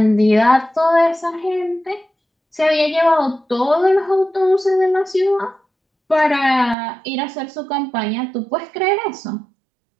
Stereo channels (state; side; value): drops out; left; at 6.8 s